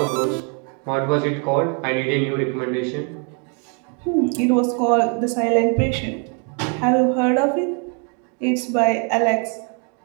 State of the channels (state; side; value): quieter; left; 39.1 dB